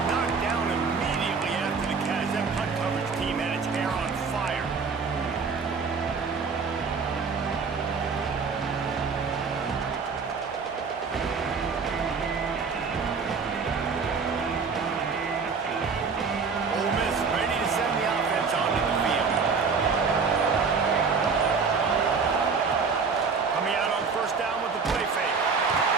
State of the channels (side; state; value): left; quieter; 5.2 dB